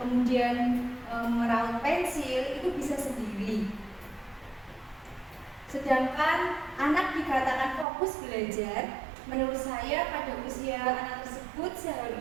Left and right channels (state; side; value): drops out; left; at 7.9 s